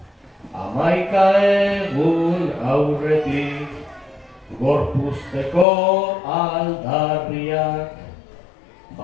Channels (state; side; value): drops out; right; at 5.7 s